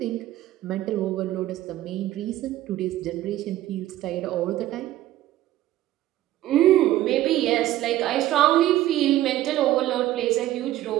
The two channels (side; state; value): left; quieter; 14.3 dB